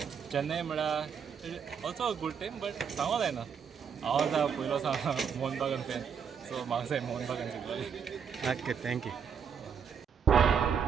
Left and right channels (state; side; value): quieter; left; 7.0 dB